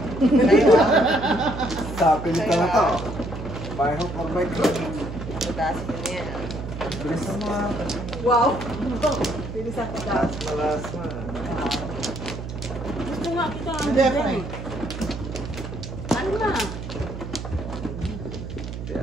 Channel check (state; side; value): noise; right; hum, 8 dB below the sound